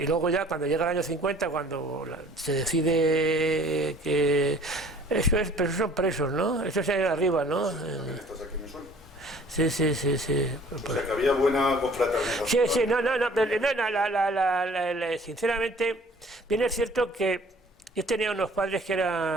luego ya cuando llega el año 50, cuando se decide que eso es, pero son presos, ¿no? Eso es ahí arriba, ¿no? ¿Estás aquí me suena? Sí. O sea, que había buena confraternización. Sí, no, sinceramente, bien es cierto que yo tenía unos padres que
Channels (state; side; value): normal; both; correlation 0.52